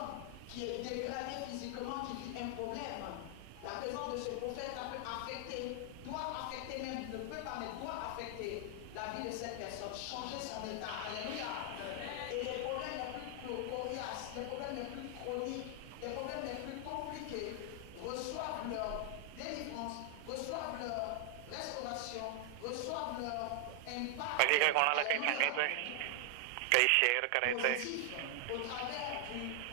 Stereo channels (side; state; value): both; different; correlation 0.00